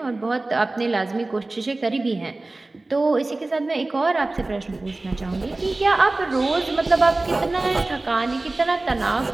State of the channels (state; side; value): quieter; left; 3.0 dB